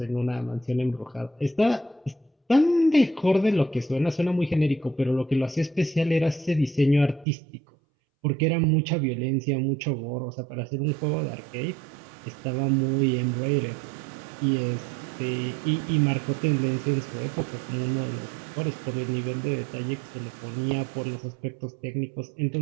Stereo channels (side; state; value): left; drops out; at 7.2 s